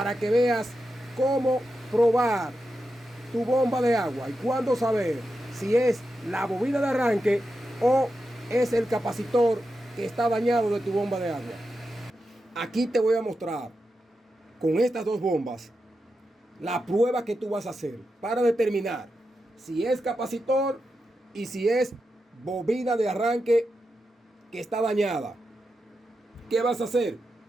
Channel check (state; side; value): normal; both; correlation 0.88